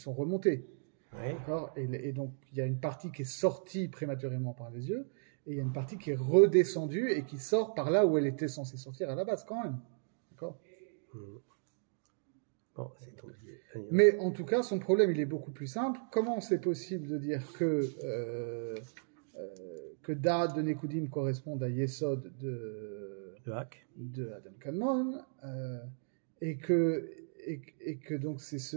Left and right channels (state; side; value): silent; left; digital silence